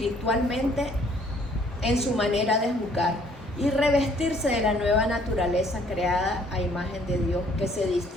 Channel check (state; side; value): normal; both; correlation 0.61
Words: en su manera de juzgar y revestirse de la nueva naturaleza creada a imagen de Dios, que se